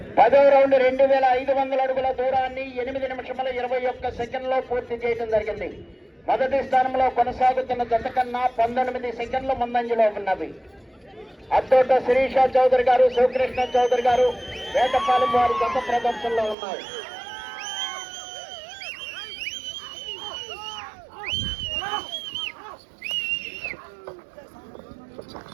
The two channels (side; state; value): left; drops out; at 16.6 s